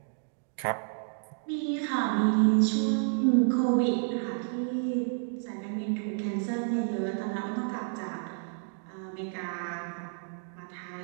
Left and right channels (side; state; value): left; silent; digital silence